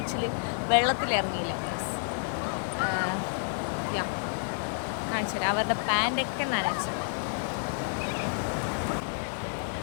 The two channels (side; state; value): right; silent; digital silence